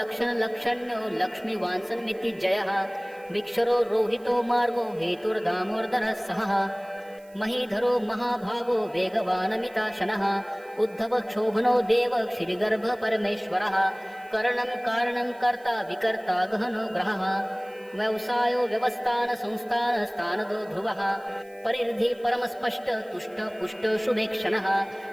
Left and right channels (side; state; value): right; noise; hiss, 29 dB below the sound